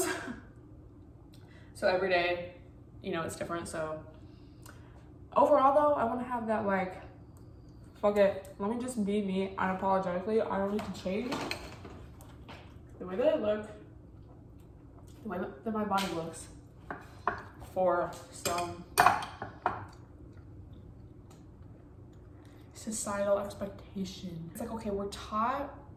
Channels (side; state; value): both; identical; correlation 1.00